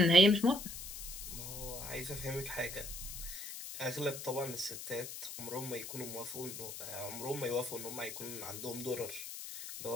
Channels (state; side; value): noise; left; hiss, 8 dB below the sound